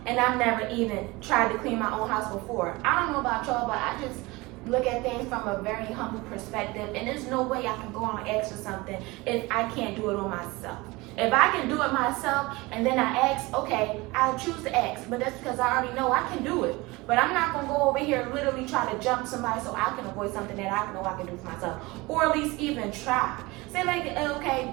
and I've never even tried to clean my own house before. I don't know about y'all, but I just look at things from a very humble perspective, and there's no way I can go on and ask for something if I can't do it on myself. If I can do it myself and then I ask, okay, I'll choose to ask, but that's because I already know I can do it. But I'm not going to go over here and literally try to jump somebody so I can avoid something that I know I can do for myself, or at least even try. Say like, okay,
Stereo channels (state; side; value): quieter; left; 22.7 dB